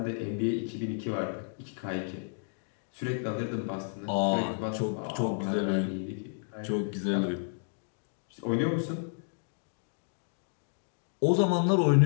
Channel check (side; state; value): right; silent; digital silence